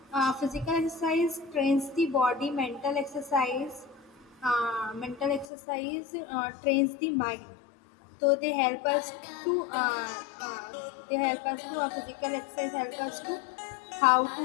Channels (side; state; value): right; drops out; at 5.5 s